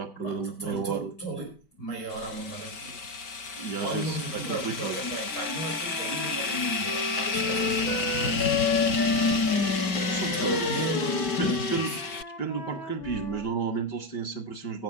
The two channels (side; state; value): right; late; 5.2 ms